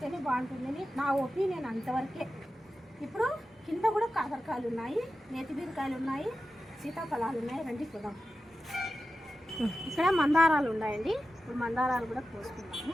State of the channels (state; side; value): normal; both; correlation 0.92